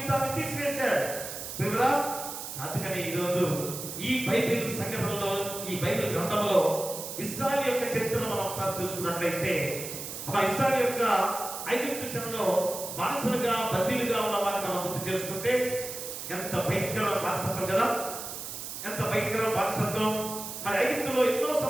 తీసివేశాడు. వివరా అందుకని ఈరోజు ఈ బైబిల్ సంఘటనలో, ఈ బైబిల్ గ్రంథంలో ఇశ్రాయేలు యొక్క చరిత్రను మనం ఒకసారి చూసుకున్నట్లయితే, ఆ ఇశ్రాయేలు యొక్క ఐగుప్తు చెరలో బానిసలుగా బందీలుగా ఉన్న వారిని మనం గుర్తు చేసుకుంటే ఎంత భయంకరమైన బానిసత్వం కదా, ఎంత భయంకరమైన బానిసత్వం. మరి ఐగుప్తులో ఎన్నో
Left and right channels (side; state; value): right; noise; hiss, 8 dB below the sound